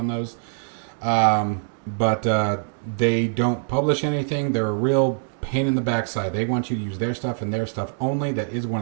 those. But they don't publish anything. They're a real pain in the backside. They want you to use their stuff and their stuff only. That is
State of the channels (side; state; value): left; silent; digital silence